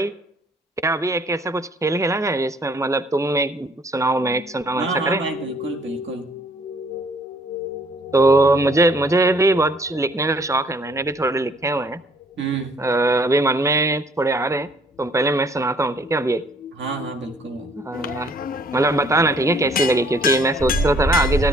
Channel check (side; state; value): both; normal; correlation 0.61